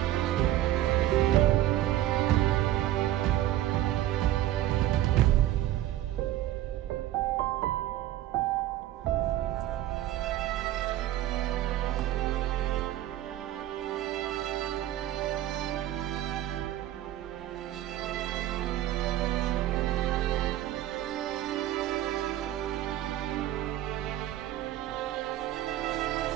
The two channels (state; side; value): quieter; left; 13.8 dB